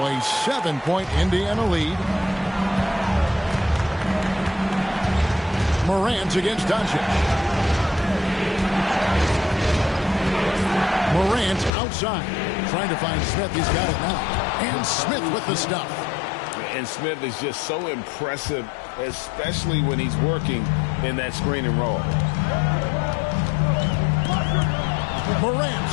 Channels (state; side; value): drops out; right; at 11.7 s